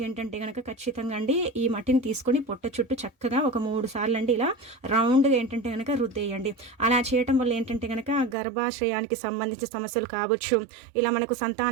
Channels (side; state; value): left; drops out; at 8.3 s